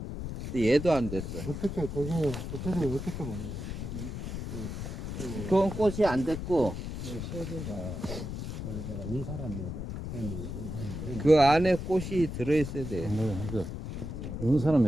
근데 얘도 안 됐어. 어떻게 그게 구체적으로 어떻게 보는 거예요? 그건 꽃이 안 됐고 세대가 원래가 눈사람이어도 그 안에 꽃이 들어있어야 돼. 이런 사람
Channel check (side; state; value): left; noise; rumble, 6 dB below the sound